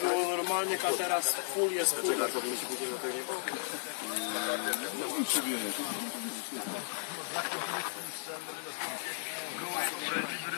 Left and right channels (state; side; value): silent; right; digital silence